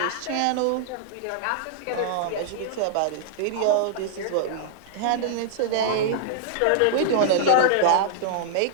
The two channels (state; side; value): different; both; correlation -0.01